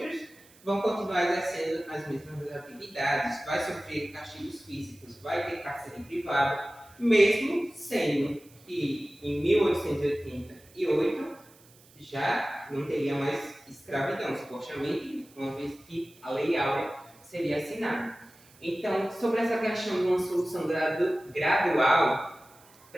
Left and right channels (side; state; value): right; noise; hiss, 26 dB below the sound